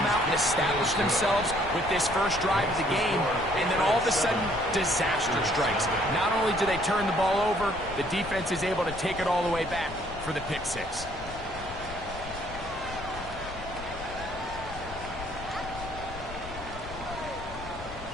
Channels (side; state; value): left; noise; rumble, 12 dB below the sound